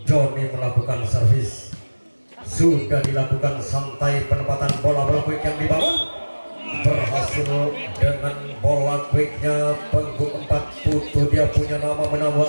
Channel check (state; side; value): inverted; both; correlation -1.00